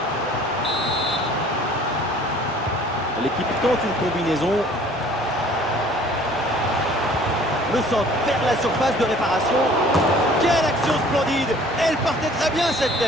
L'équipe tente une combinaison. Le centre vers la surface de réparation. Quelle action splendide. Elle partait très bien cette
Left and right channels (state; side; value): normal; both; correlation 0.52